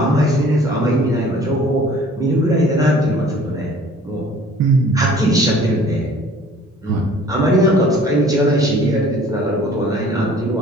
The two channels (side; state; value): both; normal; correlation 0.51